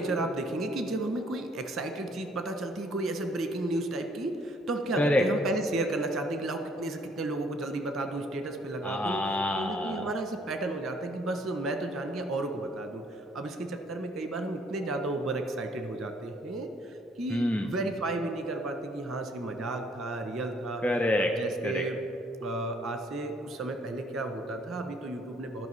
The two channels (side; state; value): both; normal; correlation 0.63